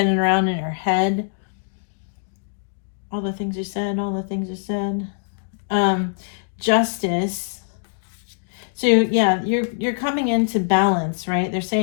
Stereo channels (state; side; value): silent; right; digital silence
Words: around in your head. All the things you said, all the things you said. Justice. So yeah, you're coming into balance, right? They're